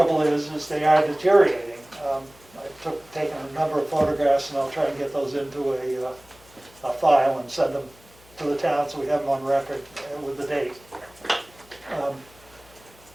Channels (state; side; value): noise; left; hum, 27 dB below the sound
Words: is they are deteriorating. I've taken a number of photographs and I'll try and get those into a file and send them to the town so we have them on record with the date.